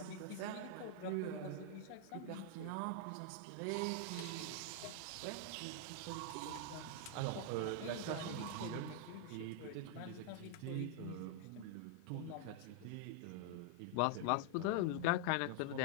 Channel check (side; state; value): both; different; correlation 0.00